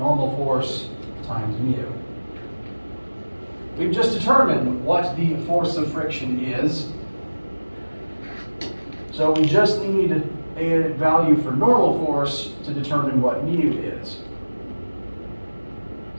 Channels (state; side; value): inverted; both; correlation -1.00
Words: force times mu. We've just determined what the force of friction is. So we just need a value for normal force to determine what mu is.